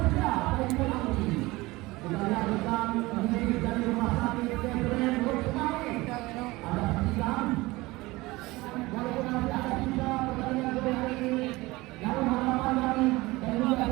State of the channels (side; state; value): left; quieter; 20.9 dB